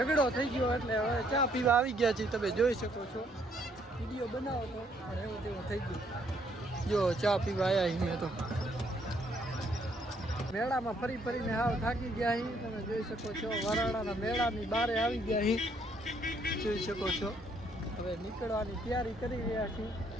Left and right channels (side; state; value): both; normal; correlation 0.68